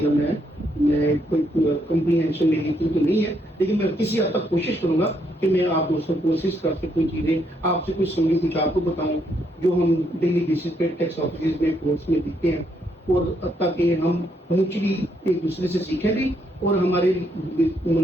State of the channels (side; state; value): both; normal; correlation 0.75